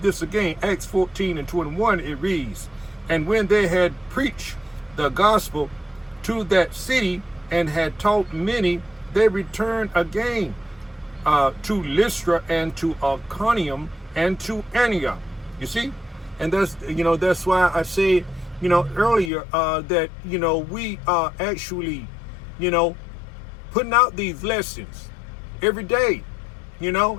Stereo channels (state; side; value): drops out; right; at 19.3 s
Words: this again, Acts 14 and 21. It reads, "And when they had preached the gospel to that city and had taught many, they returned again to Lystra and to Iconium and to Antioch." You see, and that's why I said earlier that we are actually putting out these lessons every day,